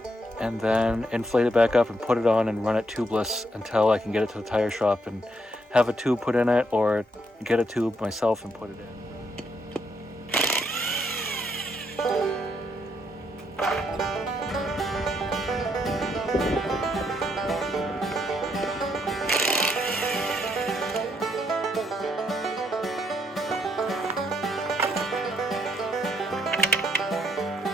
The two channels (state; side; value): normal; both; correlation 0.75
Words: and then inflate it back up and put it on and run it tubeless until I can get it to the tire shop and have a tube put in it, or get a tube myself and put it in.